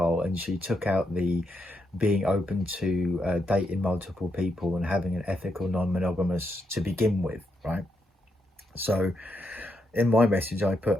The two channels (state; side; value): normal; both; correlation 0.81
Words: and she took out the being open to dating multiple people and having an ethical non-monogamous to begin with, right? So in my message I